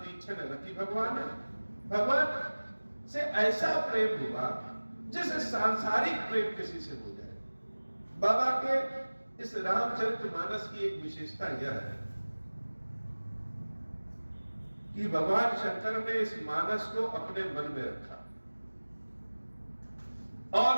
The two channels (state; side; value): inverted; both; correlation -1.00